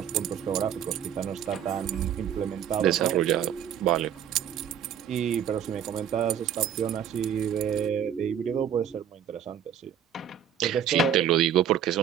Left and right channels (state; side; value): quieter; left; 9.0 dB